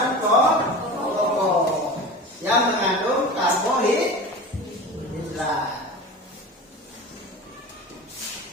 pokok yang mengandung karbohidrat.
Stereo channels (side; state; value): both; normal; correlation 0.32